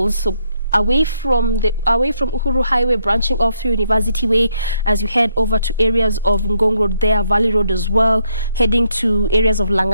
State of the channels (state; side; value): inverted; both; correlation -0.75